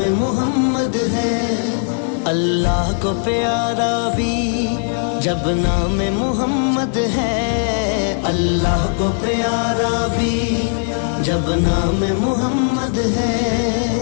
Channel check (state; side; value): silent; right; digital silence